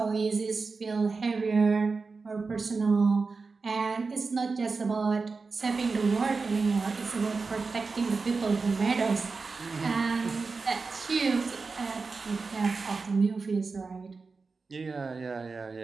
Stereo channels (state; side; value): quieter; left; 4.3 dB